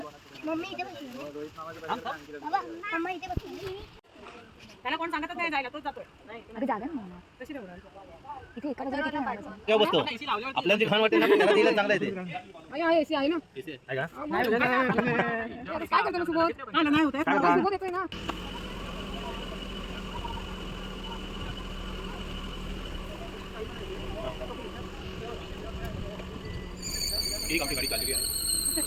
मम्मी इथे बसली बाबा मम्मा इथे बसली त्याला कोण सांगतच नाही जायला, तोच जातोय. अरे जागा ना कशी ठेवणार? इथे एका जागी किती मारायचं तेव्हा बसतो आपल्याला जे खाण वाटेल ना त्याला दिलं चांगलं आहे ते आहे एसी आहे ना आहे का? काय करतो ना सुबोध नाही होत सुबोध येतोय ना एक आपली गाडी चाललेली आहे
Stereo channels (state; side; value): identical; both; correlation 1.00